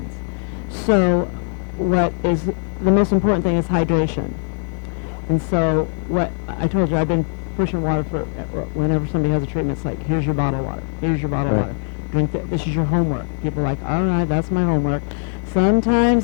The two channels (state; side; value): silent; right; digital silence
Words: So what is the most important thing is hydration. And so what I told you, I've been pushing water for whenever somebody has a treatment. It's like, here's your bottle of water. Here's your bottle of water. Drink this is your homework. People are like, all right, that's my homework.